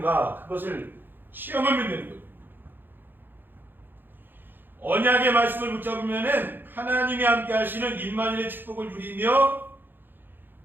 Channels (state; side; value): late; left; 0.095 ms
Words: 그것을 시험하면 되는 거예요. 언약의 말씀을 붙잡으면은 하나님이 함께 하시는 임마누엘의 축복을 누리며